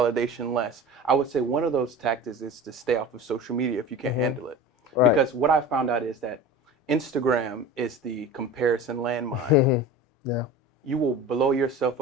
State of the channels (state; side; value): normal; both; correlation 0.34